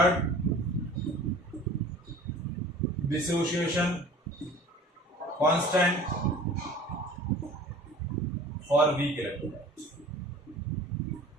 dissociation constant for weak electrolytes।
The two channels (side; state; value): both; normal; correlation 0.45